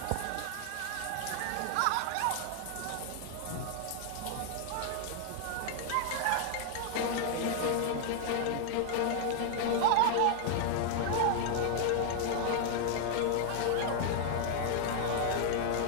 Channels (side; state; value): both; different; correlation 0.00